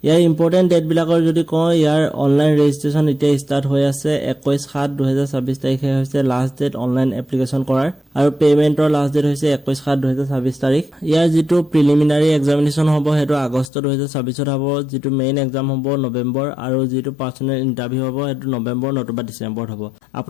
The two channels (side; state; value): right; drops out; at 13.7 s